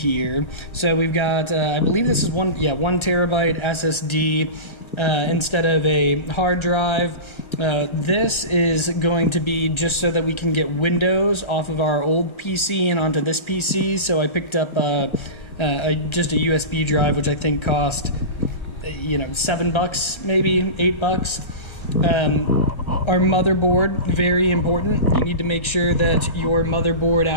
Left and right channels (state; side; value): late; right; 1.3 ms